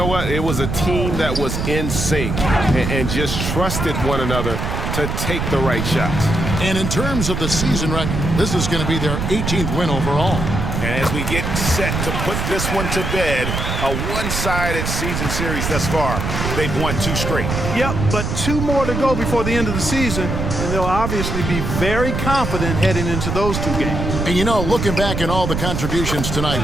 what? It was a team that was in sync and just trusted one another to take the right shots. And in terms of the season record, this is going to be their 18th win overall. And as we get set to put this one to bed, a one-sided season series thus far, they've won 2 straight. Yep, but 2 more to go before the end of the season, and they'll obviously be very confident heading into those 2 games. And you know, looking back at all the contributions tonight,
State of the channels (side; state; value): right; noise; rumble, 2 dB below the sound